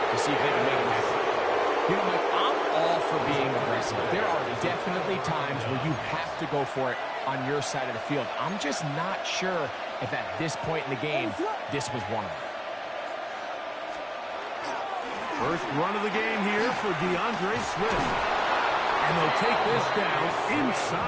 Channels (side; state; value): both; identical; correlation 1.00